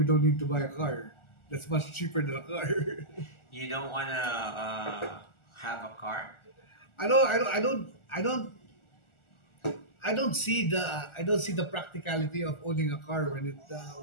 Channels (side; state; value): right; late; 1.4 ms